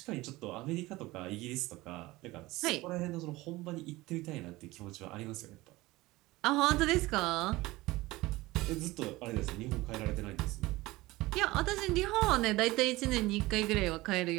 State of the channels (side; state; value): left; quieter; 19.7 dB